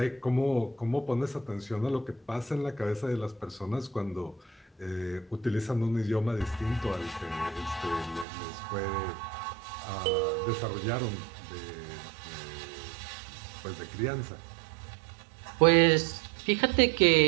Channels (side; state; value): left; drops out; at 8.2 s